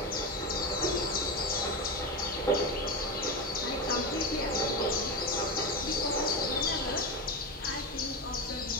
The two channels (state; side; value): normal; both; correlation 0.17